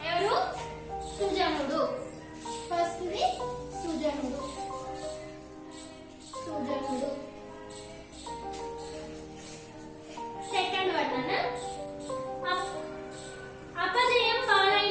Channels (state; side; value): identical; both; correlation 1.00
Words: ఎవరు, సుజనుడు. ఫస్ట్ ది సుజనుడు. సుజనుడు. సెకండ్ వన్ అన్న, అపజయం